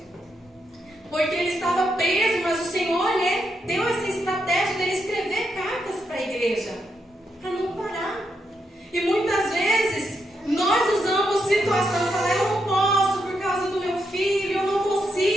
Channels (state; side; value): normal; both; correlation 0.81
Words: porque ele estava preso, mas o Senhor, né, deu essa estratégia dele escrever cartas para a igreja, para não parar. E muitas vezes nós usamos situação, falar, eu não posso por causa do meu filho, eu não